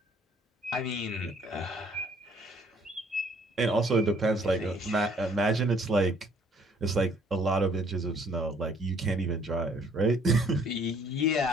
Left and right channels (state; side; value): normal; both; correlation 0.61